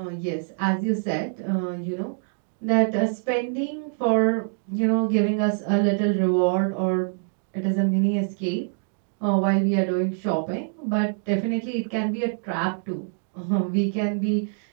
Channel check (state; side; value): silent; left; digital silence